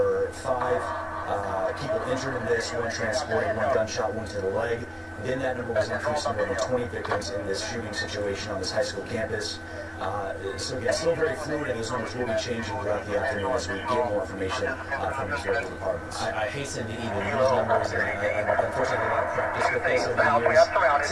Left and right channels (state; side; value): identical; both; correlation 1.00